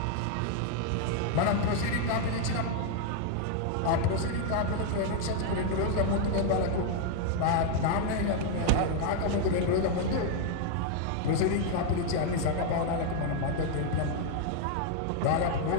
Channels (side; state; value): both; different; correlation 0.00